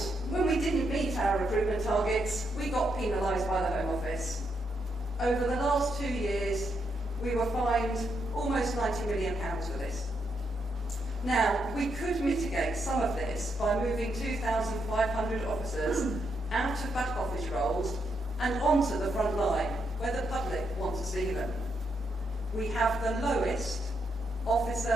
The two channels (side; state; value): both; normal; correlation 0.79